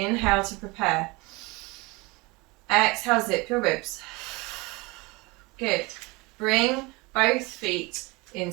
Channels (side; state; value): left; quieter; 25.1 dB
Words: to prepare. Exhale, zip your ribs. Good. Bring both feet